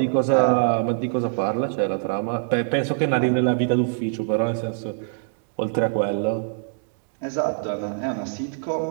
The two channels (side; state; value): left; silent; digital silence